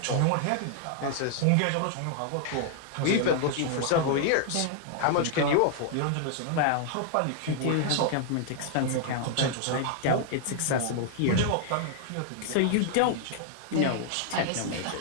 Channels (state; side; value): different; both; correlation -0.01